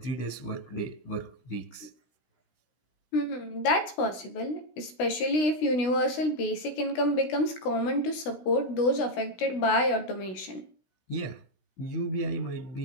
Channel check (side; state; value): right; late; 16 ms